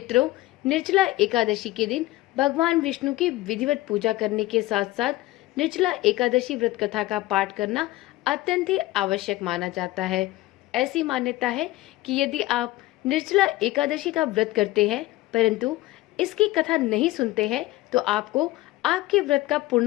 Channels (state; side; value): quieter; right; 17.7 dB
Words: निर्जला एकादशी के दिन भगवान विष्णु की विधिवत पूजा करने के साथ साथ निर्जला एकादशी व्रत कथा का पाठ करना अत्यंत ही आवश्यक माना जाता है। ऐसी मान्यता है कि यदि आप निर्जला एकादशी का व्रत करते हैं परंतु इसकी कथा नहीं सुनते हैं तो आपको आपके व्रत का